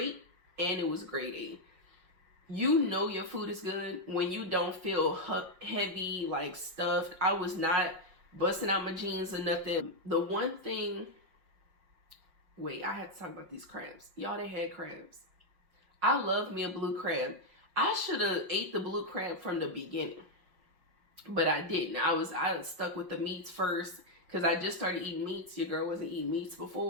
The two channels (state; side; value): late; left; 5.4 ms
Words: and it was grade A. You know your food is good when you don't feel heavy, like stuffed. I was not busting out my jeans or nothing. The one thing, wait, I have to talk about these crabs. Y'all, they had crabs. I love me a blue crab. I should have ate the blue crab from the beginning, but I didn't. I stuck with the meats first because I just started eating meats. Your girl wasn't eating meats